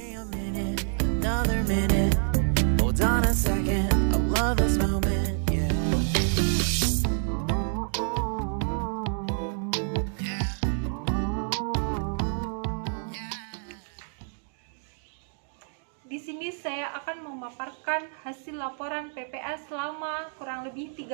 Di sini saya akan memaparkan hasil laporan PPL selama kurang lebih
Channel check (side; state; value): left; silent; 59 dB below the other